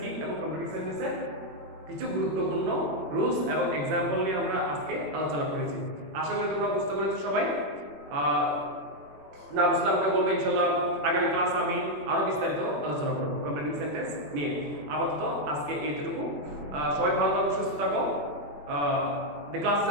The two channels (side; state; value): left; late; 21 ms